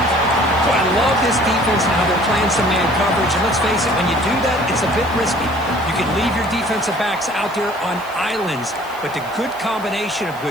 why I love this defense and how they're playing some man coverage. And let's face it, when you do that, it's a bit risky. You can leave your defensive backs out there on islands, but the good combination of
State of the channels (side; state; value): right; noise; hiss, 22 dB below the sound